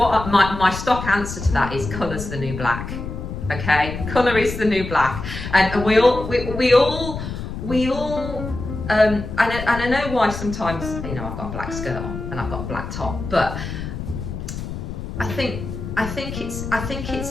my stock answer to that is colour's the new black. Okay, colour is the new black, and we all and I know why sometimes I've got a black skirt on and I've got a black top, but I think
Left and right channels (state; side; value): noise; left; rumble, 7 dB below the sound